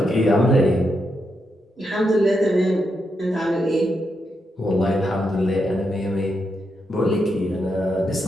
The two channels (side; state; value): both; normal; correlation 0.83